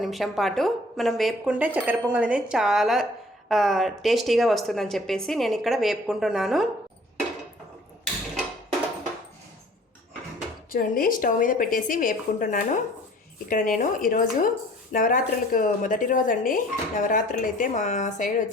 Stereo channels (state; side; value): normal; both; correlation 0.52